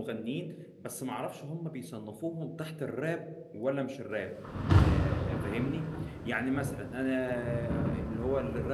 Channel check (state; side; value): identical; both; correlation 1.00